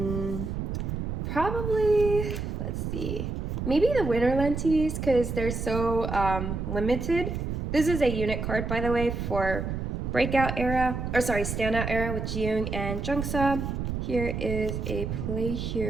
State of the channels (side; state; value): right; noise; rumble, 3 dB below the sound